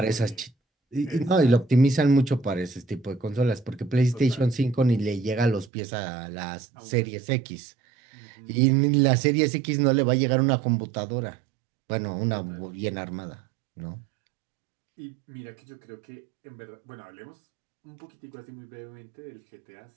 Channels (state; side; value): drops out; left; at 5.7 s